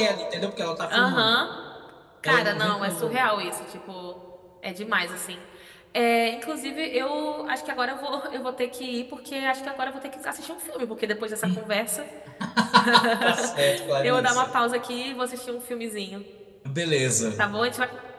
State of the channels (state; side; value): identical; both; correlation 1.00